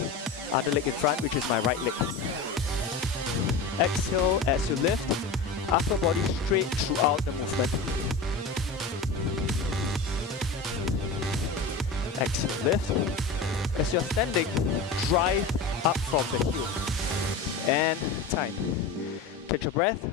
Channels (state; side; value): quieter; right; 4.1 dB